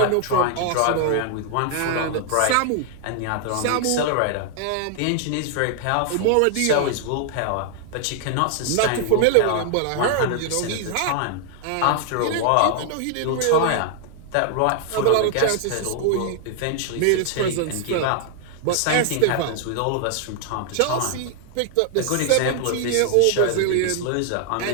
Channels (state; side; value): different; both; correlation 0.00